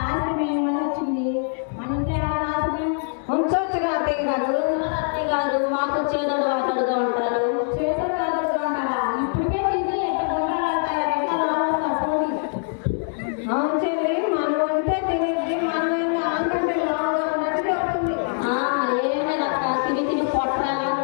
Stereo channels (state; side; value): silent; right; 63 dB below the other